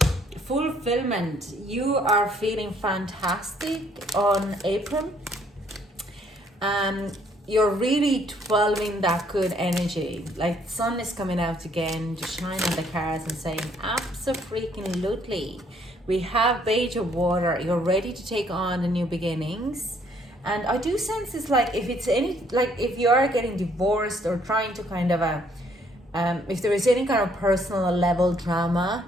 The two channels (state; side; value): normal; both; correlation 0.66